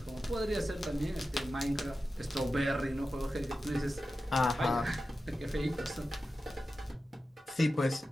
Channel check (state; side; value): normal; both; correlation 0.93